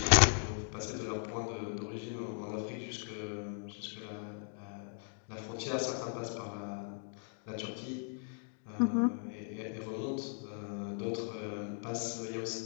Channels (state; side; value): silent; right; 53 dB below the other